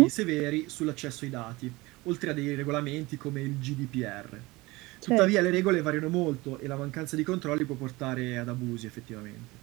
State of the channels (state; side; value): quieter; left; 21.8 dB